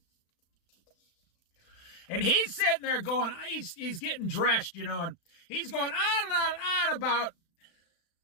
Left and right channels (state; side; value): late; right; 36 ms